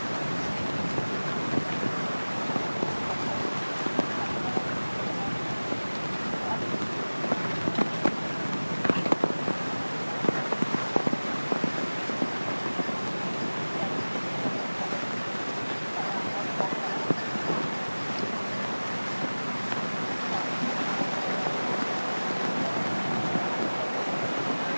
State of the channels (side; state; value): both; inverted; correlation -1.00